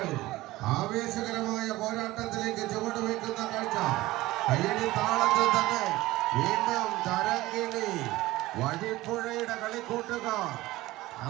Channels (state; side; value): quieter; left; 18.1 dB